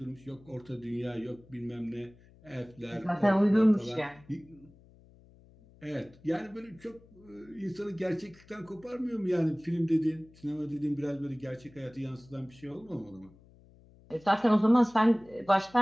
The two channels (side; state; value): left; noise; hum, 26 dB below the sound